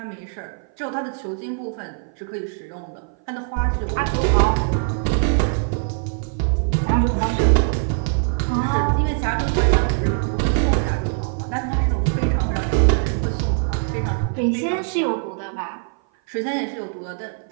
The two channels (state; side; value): silent; left; 57 dB below the other